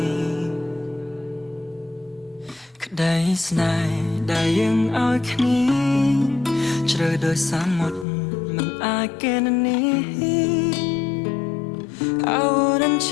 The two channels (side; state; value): right; drops out; at 8.1 s